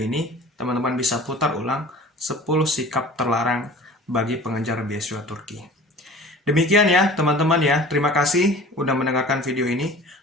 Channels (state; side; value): normal; both; correlation 0.43